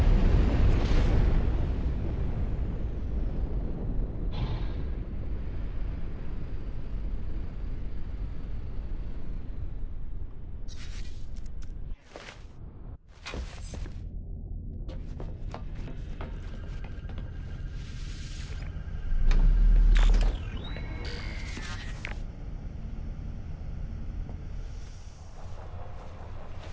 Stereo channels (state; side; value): identical; both; correlation 1.00